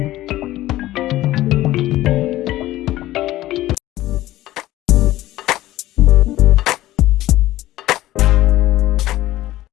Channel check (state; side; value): quieter; right; 15.7 dB